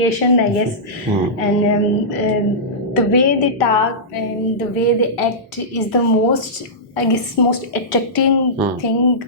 I guess. And the way they talk and the way they act is the most, I guess, most attracting thing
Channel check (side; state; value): both; normal; correlation -0.16